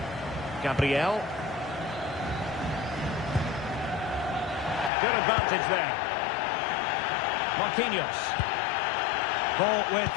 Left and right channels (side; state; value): right; drops out; at 4.9 s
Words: Gabriel. Good advantage there. Marquinhos. Ball with